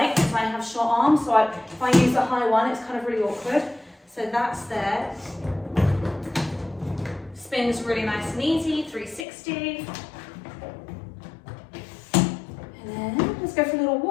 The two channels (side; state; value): right; drops out; at 9.2 s